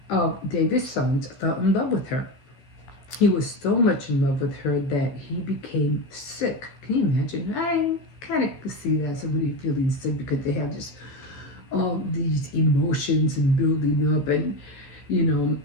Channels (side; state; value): right; late; 14 ms